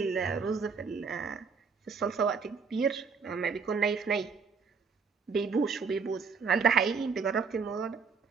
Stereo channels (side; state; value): left; quieter; 5.4 dB